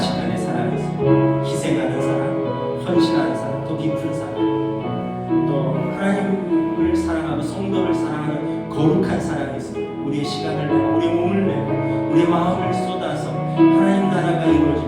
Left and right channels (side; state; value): both; identical; correlation 1.00